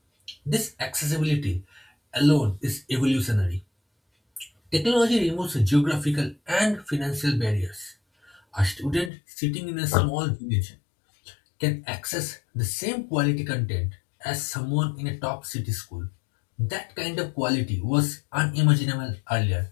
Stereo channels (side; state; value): right; drops out; at 9.1 s